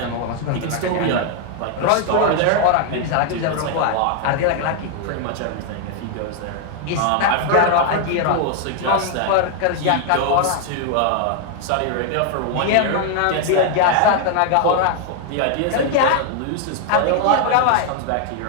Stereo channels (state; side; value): different; both; correlation 0.00